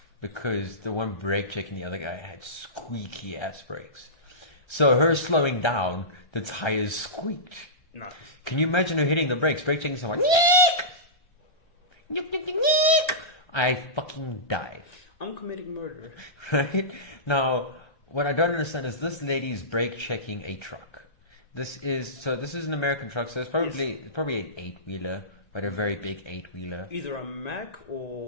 because the one brake checking the other guy had squeaky ass brakes. So her slowing down, the tires squeaked. No. Can you imagine her hitting the brakes, brake checking someone? Neek! I fucking die. I'm committing murder. Right? Now, what I don't understand is this lady's brake checking a truck. This is an American truck, so it's probably an 8-wheeler, but a very big 8-wheeler. Either a Mack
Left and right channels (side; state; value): right; late; 1.3 ms